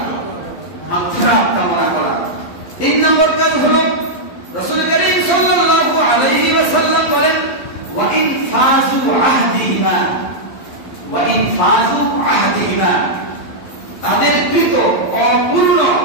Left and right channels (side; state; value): right; late; 11 ms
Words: মাগফিরাত কামনা করা। 3 নম্বর কাজ হলো রাসূল কারীম সাল্লাল্লাহু আলাইহি ওয়াসাল্লাম বলেন, ওয়া ইন ফাযু আহদিহিমা, তাদের কৃত অপূর্ণ